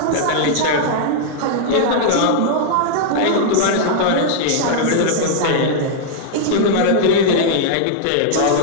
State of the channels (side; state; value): both; different; correlation -0.01